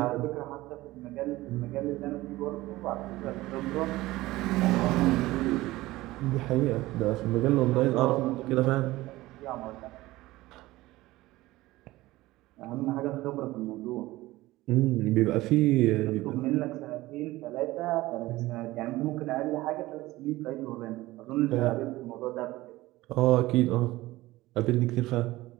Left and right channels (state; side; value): quieter; left; 18.2 dB